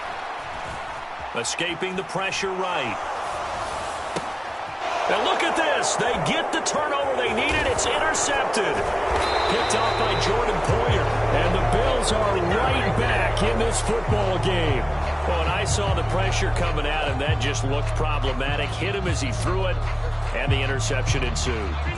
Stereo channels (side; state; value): both; identical; correlation 1.00